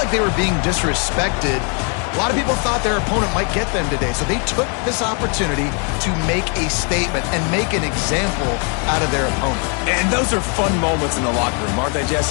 they were being disrespected. A lot of people thought their opponent might get them today, so they took this opportunity to make a statement and make an example out of their opponent. And those are fun moments in the locker room, aren't they,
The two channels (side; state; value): right; quieter; 35.7 dB